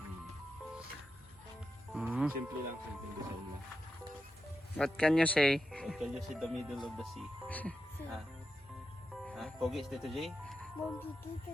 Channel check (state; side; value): normal; both; correlation 0.88